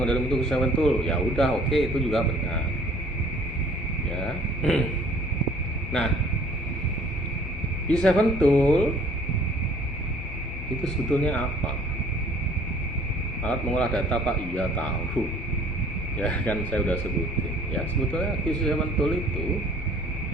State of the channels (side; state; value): both; normal; correlation 0.55